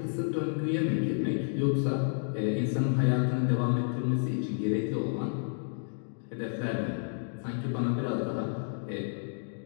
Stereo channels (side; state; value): right; silent; digital silence